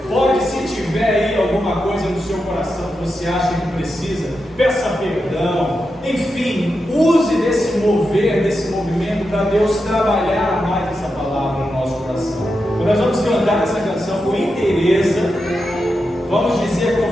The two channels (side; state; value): both; normal; correlation 0.88